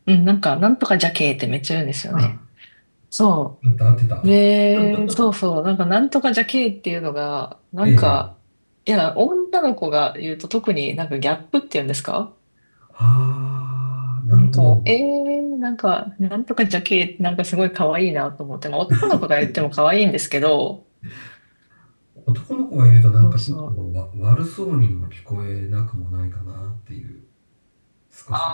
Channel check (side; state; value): both; inverted; correlation -1.00